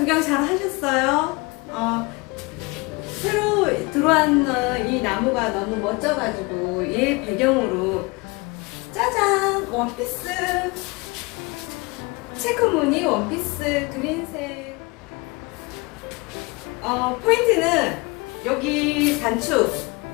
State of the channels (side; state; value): right; quieter; 26.5 dB